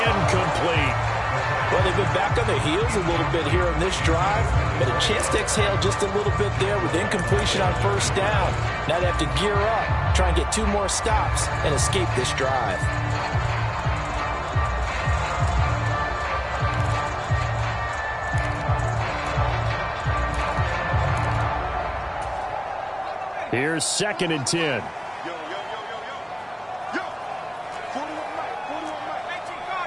Well, they've been back on their heels a little bit here on this drive, but a chance to exhale just a little bit there with incompletion on first down. Now they have to gear up, try and get 2 more stops, and escape this drive. Here's 2nd and 10.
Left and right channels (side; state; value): both; identical; correlation 1.00